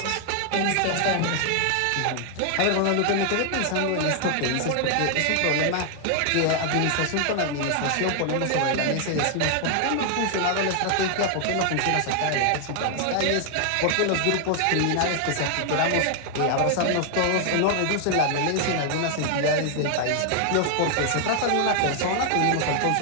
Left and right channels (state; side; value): different; both; correlation 0.00